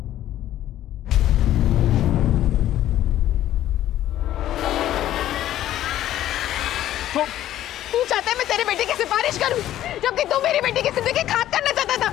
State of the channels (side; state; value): right; quieter; 12.8 dB